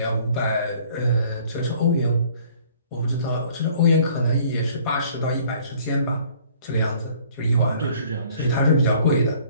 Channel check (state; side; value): inverted; both; correlation -0.56